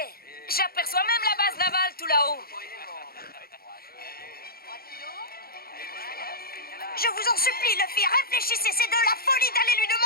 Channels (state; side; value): late; right; 0.44 ms